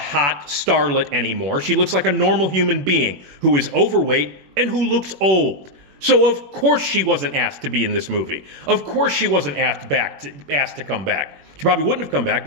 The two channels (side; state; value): left; late; 21 ms